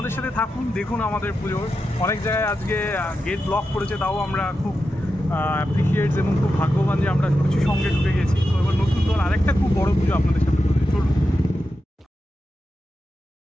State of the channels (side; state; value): both; normal; correlation 0.89